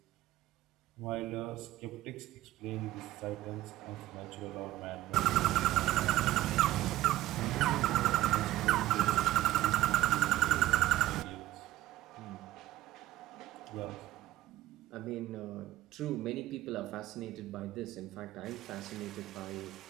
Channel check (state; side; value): quieter; left; 15.4 dB